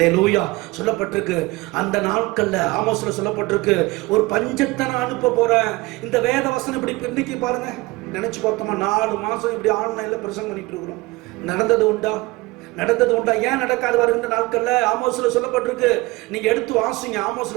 சொல்லப்பட்டிருக்கு அந்த நாட்கள்ல ஆமோஸ்ல சொல்லப்பட்டிருக்கு, ஒரு பஞ்சத்தை நான் அனுப்ப போறேன். இந்த வேத வசனம் இப்படி இன்னைக்கு பாருங்க, நினைச்சு பார்த்தோமா 4 மாசம் இப்படி ஆன்லைன்ல பிரசங்கம் பண்ணிட்டு இருக்கிறோம். நடந்தது உண்டா? நடந்தது உண்டா? ஏன் நடக்காது? வருகின்ற நாட்கள்ல ஆமோஸ்ல சொல்லப்பட்டிருக்கு, நீங்க எடுத்து வாசிங்க.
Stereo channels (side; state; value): left; quieter; 22.1 dB